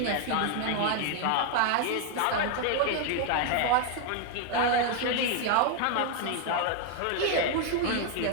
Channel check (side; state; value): both; different; correlation 0.00